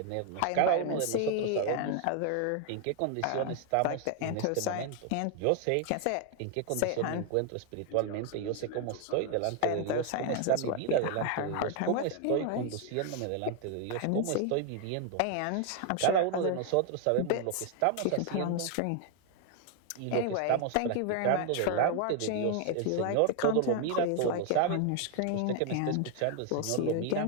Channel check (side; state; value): both; different; correlation 0.00